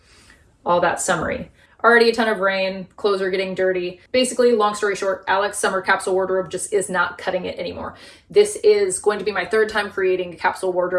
all that summery? Already a ton of rain, clothes are getting dirty. Basically, long story short, Alex's summer capsule wardrobe just is not cutting it anymore. This is going to be my third time creating a capsule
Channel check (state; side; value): identical; both; correlation 1.00